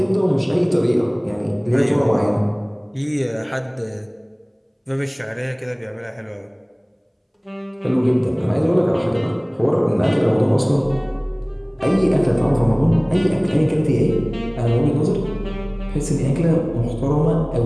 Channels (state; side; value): identical; both; correlation 1.00